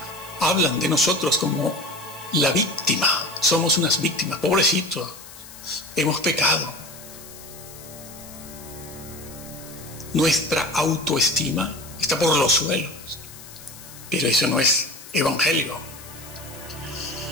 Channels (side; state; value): left; noise; hiss, 17 dB below the sound